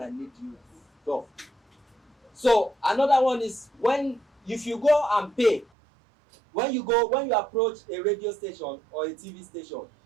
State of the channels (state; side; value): drops out; left; at 5.7 s